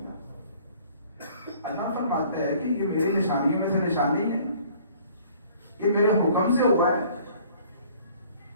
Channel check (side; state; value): both; inverted; correlation -0.55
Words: اللہ فرماتا ہے کہ یہ میری نشانیوں میں سے نشانی ہے، یہ میرے حکم سے ہوا ہے.